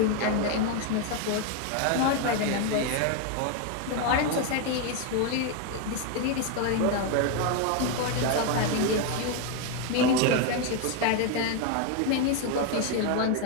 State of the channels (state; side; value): different; both; correlation 0.01